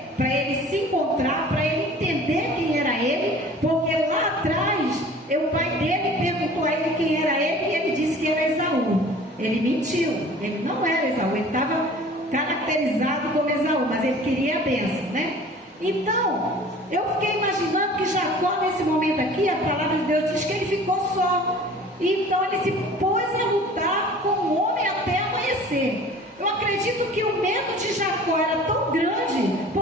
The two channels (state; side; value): normal; both; correlation 0.46